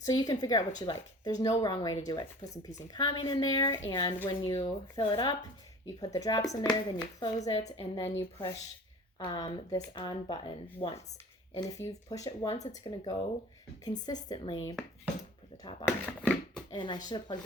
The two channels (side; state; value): both; normal; correlation 0.43